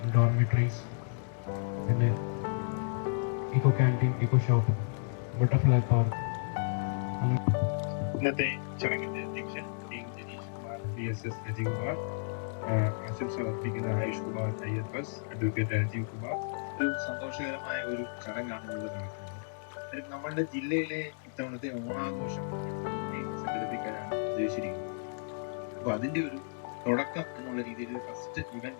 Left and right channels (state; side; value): silent; right; digital silence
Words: ഡോർമിറ്ററീസ്, പിന്നെ eco canteen, eco shop, butterfly park. ഇന്നത്തെ ചടങ്ങിന്റെ അധ്യക്ഷൻ ജനീഷ് കുമാർ, VSS അജയ് കുമാർ, ആശംസ അർപ്പിക്കുന്ന ആയുഷ് കുമാർ IFS, അഡ്വക്കേറ്റ് രാജീവ് കുമാർ. ഒരു സന്തോഷകരമായ ഒരു ചടങ്ങാണ് ഇവിടെ നടക്കുന്നത്. നമ്മളുടെ ജില്ലയിലെ ഇത്തവണത്തെ ഓണാഘോഷം സംഘടിപ്പിക്കാനാണ് ഉദ്ദേശിച്ചിരിക്കുന്നത്. അപ്പൊ അതിന്റെ ഒരു തുടക്കം എന്നുള്ള രീതിയിൽ ഫസ്റ്റ്